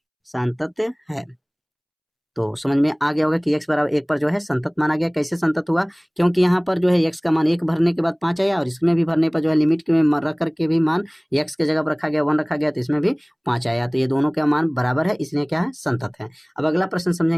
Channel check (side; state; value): both; identical; correlation 1.00